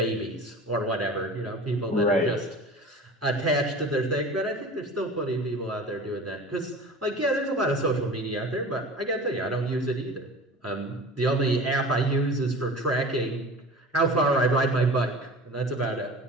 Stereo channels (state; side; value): normal; both; correlation 0.38